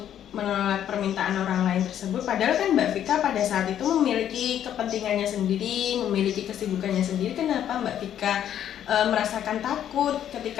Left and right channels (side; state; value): right; quieter; 10.3 dB